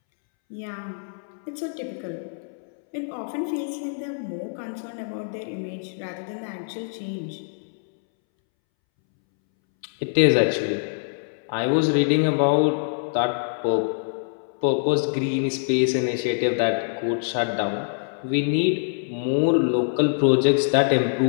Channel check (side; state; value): right; silent; 62 dB below the other